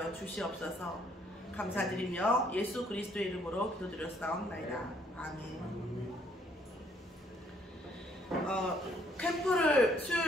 주시옵소서. 감사드리며 예수 그리스도의 이름으로 기도드렸사옵나이다. 아멘. 캠프를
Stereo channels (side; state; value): both; normal; correlation 0.66